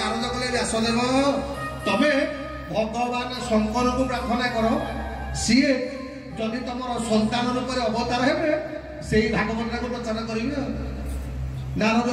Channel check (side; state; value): both; identical; correlation 1.00